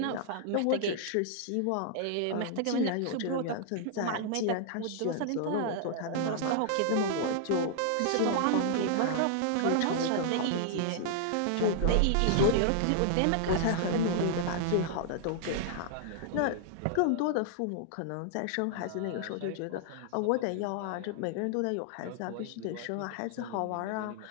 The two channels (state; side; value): different; both; correlation -0.01